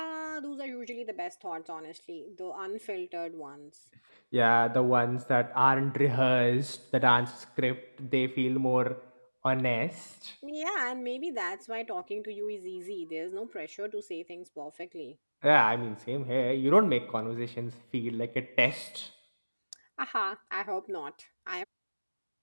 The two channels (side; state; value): both; inverted; correlation -1.00